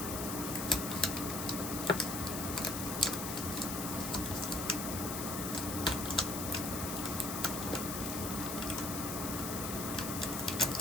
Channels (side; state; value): left; noise; hiss, 4 dB below the sound